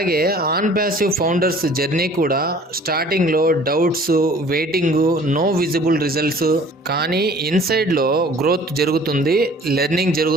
ఆన్ ప్యాసివ్ ఫౌండర్స్ జర్నీ కూడా స్టార్టింగ్లో doubts, waiting, no visible results. కానీ ఇన్సైడ్లో గ్రోత్ జరుగుతుంది, లెర్నింగ్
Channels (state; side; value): normal; both; correlation 0.51